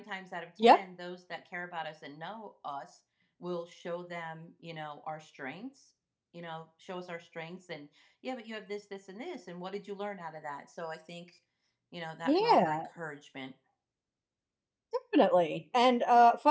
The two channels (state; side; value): identical; both; correlation 1.00